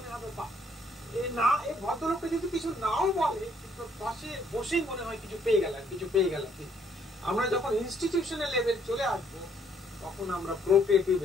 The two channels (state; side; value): normal; both; correlation 0.67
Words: হবে বাহ, না এই ভদ্রলোকটা যদি কিছু নাও বলে, কিন্তু পাশে বসেই মনে হয় কিছু পেয়ে গেলাম, কিছু পেয়ে গেলাম। আমরা যখন ইনস্টিটিউশনাল লেভেল চলে আসবো, তখন আমরা প্রো